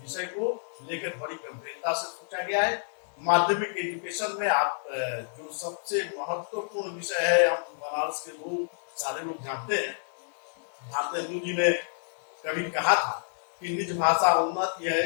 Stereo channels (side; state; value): right; silent; 59 dB below the other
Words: को लेकर बड़ी गंभीरता से सोचा गया है। माध्यमिक एजुकेशन में आप जो सबसे महत्वपूर्ण विषय है, हम बनारस के लोग सारे लोग जानते हैं, भारतेंदु जी ने कभी कहा था कि निज भाषा उन्नत